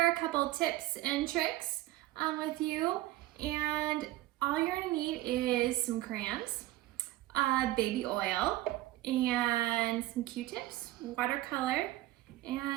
a couple tips and tricks with you, and all you're going to need is some crayons, baby oil, and some Q-tips, watercolor,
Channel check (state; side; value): quieter; left; 16.9 dB